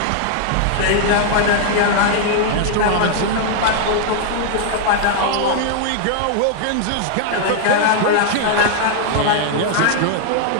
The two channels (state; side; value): different; both; correlation 0.00